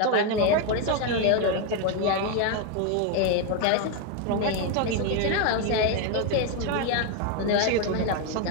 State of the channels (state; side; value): different; both; correlation 0.01